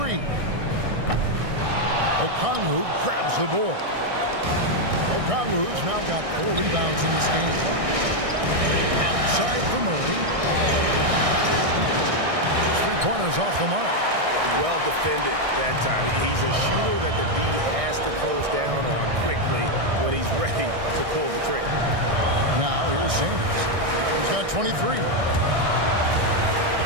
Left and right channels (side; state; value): left; late; 1.6 ms